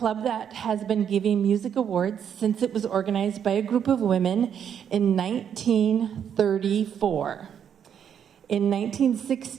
that has been giving music awards since it was organized by a group of women in 1934. In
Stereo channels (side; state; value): left; quieter; 8.5 dB